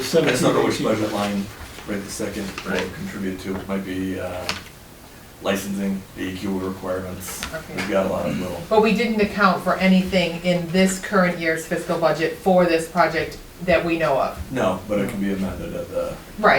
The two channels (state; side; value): identical; both; correlation 1.00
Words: 17, don't know which 18. budget line right this second will contribute to, it might be licensing, DEQ requirements. Okay. We've got a lot of little, But we didn't account for anything in this current year's fiscal budget for this project that we know of? no, but it can be amended at the